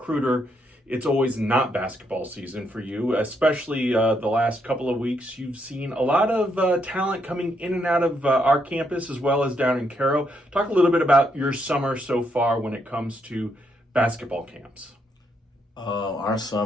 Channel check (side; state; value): both; normal; correlation 0.76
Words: it's always not basketball season for you, especially the last couple of weeks. You've seen a lot of talent coming in and out of our campus as well as down in Cairo. Talk a little bit about your summer so far when it comes to basketball camps. Our